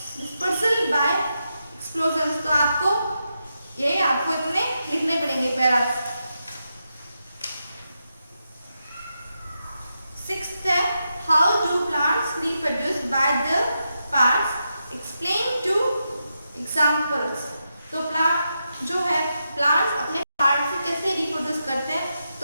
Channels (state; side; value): inverted; both; correlation -0.86